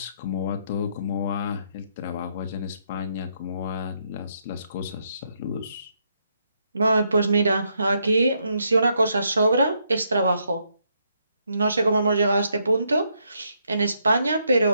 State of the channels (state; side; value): inverted; both; correlation -0.76